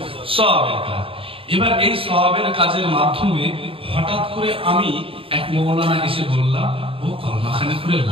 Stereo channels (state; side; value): late; left; 0.27 ms